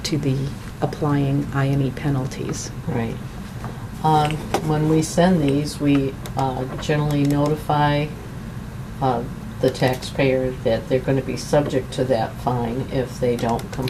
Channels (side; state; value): both; identical; correlation 1.00